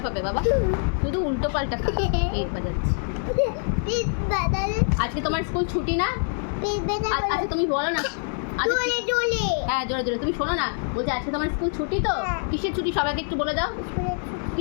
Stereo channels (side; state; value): right; silent; 62 dB below the other